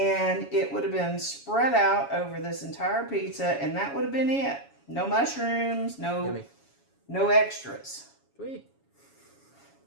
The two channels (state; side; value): late; right; 7.2 ms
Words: it would have been spread out over this entire pizza, and that would have been it. No mushrooms, no extras. Sweet.